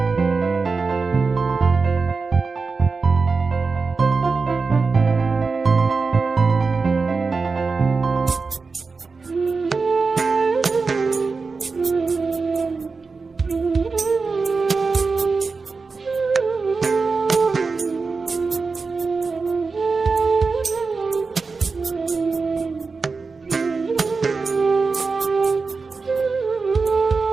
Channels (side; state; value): left; quieter; 4.4 dB